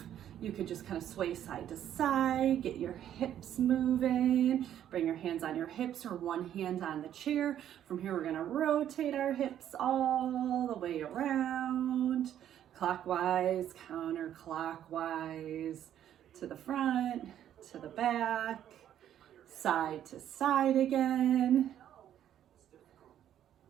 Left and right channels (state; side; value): quieter; left; 10.7 dB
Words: You could just kind of sway side to side, get your hips moving, bring your hands on your hips or one hand on the chair. From here, we're gonna rotate our hips all the way around, clockwise, counterclockwise, to the front, to the back, side to side again.